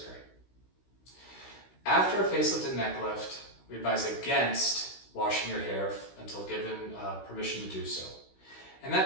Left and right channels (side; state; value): right; late; 16 ms